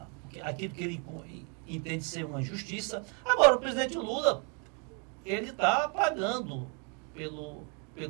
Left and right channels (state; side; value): quieter; left; 34.8 dB